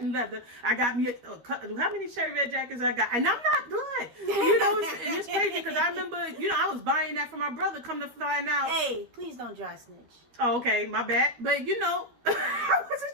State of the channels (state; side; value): late; left; 12 ms